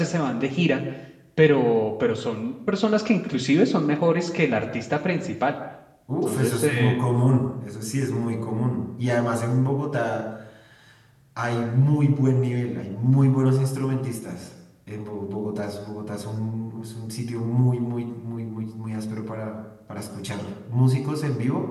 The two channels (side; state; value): both; identical; correlation 1.00